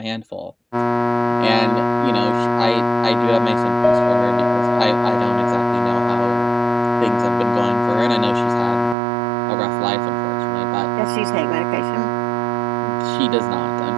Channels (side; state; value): left; drops out; at 9.0 s